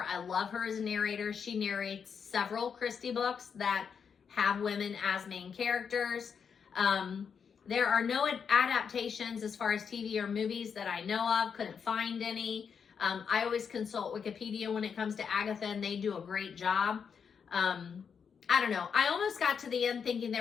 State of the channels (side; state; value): right; quieter; 6.7 dB